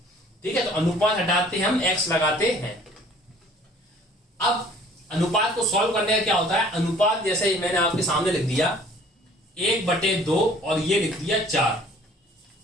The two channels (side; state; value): both; normal; correlation 0.53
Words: ठीक है, तो अनुपात हटाते हम x लगाते हैं। अब अनुपात को सॉल्व करने का क्या होता है? अनुपात जैसे मैंने आपके सामने लिख दिया 1/2 और ये लिख दिया 4।